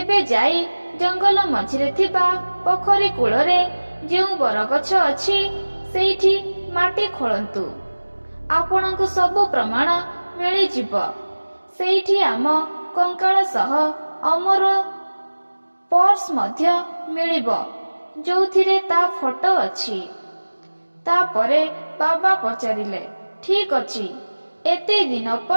ଯାଇ ଜଙ୍ଗଲ ମଝିରେ ଥିବା ପୋଖରୀ କୂଳରେ ଯେଉଁ ବରଗଛ ଅଛି ସେଇଠି ମାଟି ଖୋଳନ୍ତୁ। ଆପଣଙ୍କୁ ସବୁ ପ୍ରମାଣ ମିଳିଯିବ। ସେଇଠି ଆମ କଙ୍କାଳ ସହ ଅମର ପର୍ସ ମଧ୍ୟ ମିଳିବ, ଯୋଉଥିରେ ତା ଫଟୋ ଅଛି। ତାପରେ ବାବା ପଚାରିଲେ, ଠିକ ଅଛି, ଏତେ ଦିନ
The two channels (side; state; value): both; inverted; correlation -1.00